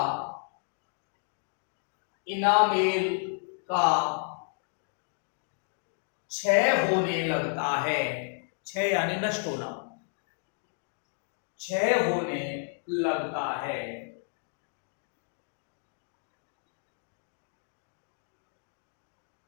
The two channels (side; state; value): right; silent; 57 dB below the other